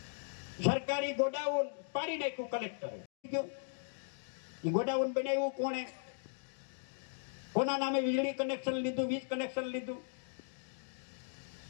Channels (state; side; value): silent; right; digital silence